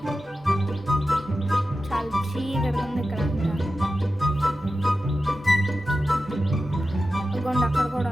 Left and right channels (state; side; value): normal; both; correlation 0.93